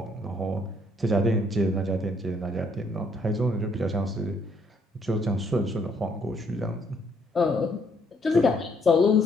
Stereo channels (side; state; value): both; normal; correlation 0.68